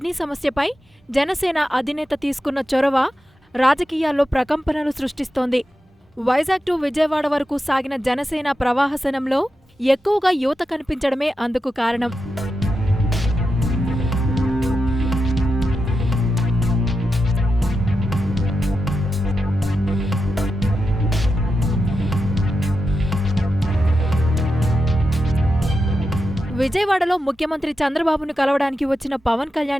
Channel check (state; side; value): normal; both; correlation 0.89